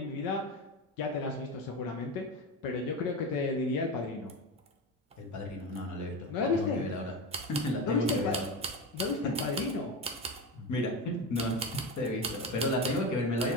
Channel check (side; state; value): both; normal; correlation 0.21